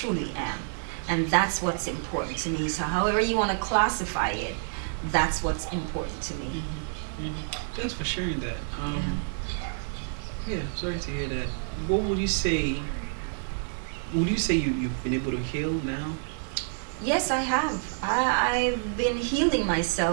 am. And that's what's important to me. So however you want to classify it, that's what's important to me. Thanks for sharing that. Yeah, sorry to hear that. What would you say? Would you say you've been able to heal now? Yes, I have. I've been healing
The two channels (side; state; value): left; silent; digital silence